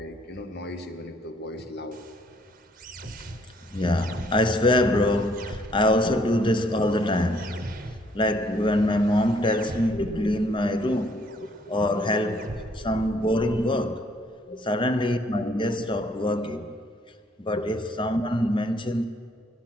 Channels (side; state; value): both; normal; correlation 0.65